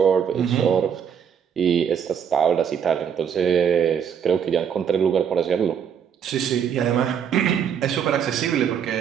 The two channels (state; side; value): quieter; left; 7.9 dB